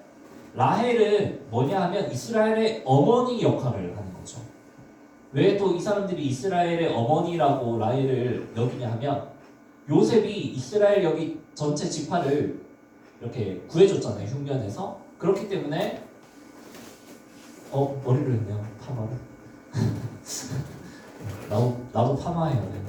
라헬은 뭐냐 하면 이스라엘의 어머니 역할을 하는 거죠. 왜 또 이 사람들이 이스라엘의 어머니라고 라헬을 여기냐 하면, 요셉이 이스라엘 여기 전체 지파를 이렇게 구해줬잖아요, 흉년에서. 그렇기 때문에 머리를 했네요, 파마를. 나도 파마해야 돼.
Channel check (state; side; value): identical; both; correlation 1.00